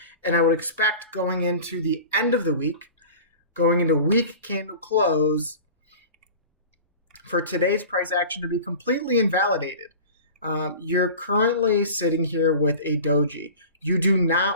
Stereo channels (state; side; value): inverted; both; correlation -0.38